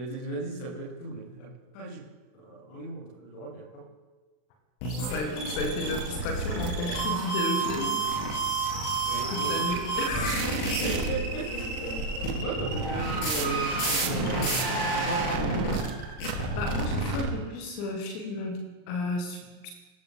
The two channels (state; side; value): late; right; 40 ms